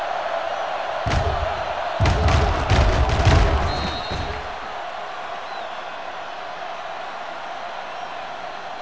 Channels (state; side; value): identical; both; correlation 1.00